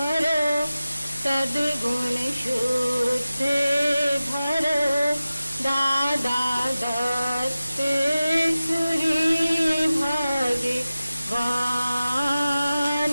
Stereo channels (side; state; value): both; inverted; correlation -0.95